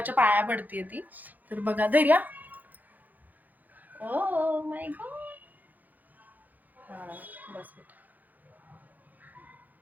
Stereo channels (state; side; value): late; left; 0.083 ms